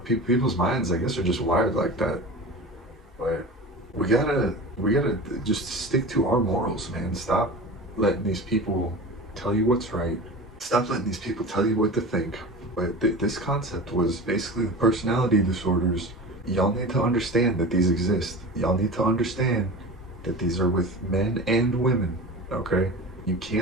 minds, I guess, are just wired like that. But we gotta just stick to our morals, man. Stop letting these people tell you what's right. Stop letting these people tell you what to think. But this concept was basically the personality disorders. Y'all need to understand that these exist. Y'all need to understand that these are with men and women, okay? You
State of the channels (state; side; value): normal; both; correlation 0.32